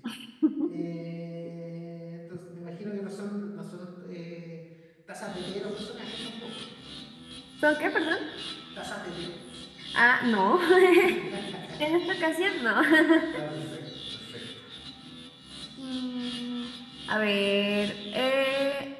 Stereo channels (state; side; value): identical; both; correlation 1.00